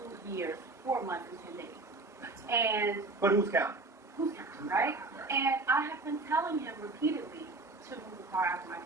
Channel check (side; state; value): left; quieter; 3.3 dB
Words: 2 years, 4 months, and 10 days. And But who's counting? who's counting, right? And I have been telling him repeatedly to move the car out of my